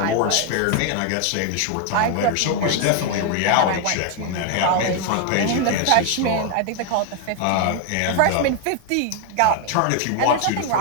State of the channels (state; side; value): different; both; correlation 0.01